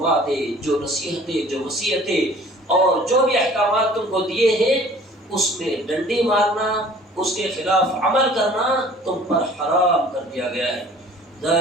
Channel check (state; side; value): normal; both; correlation 0.50